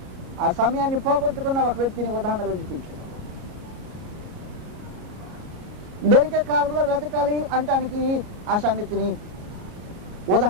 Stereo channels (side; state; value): left; late; 33 ms